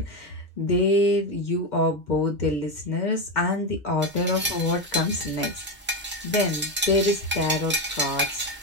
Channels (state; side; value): normal; both; correlation 0.12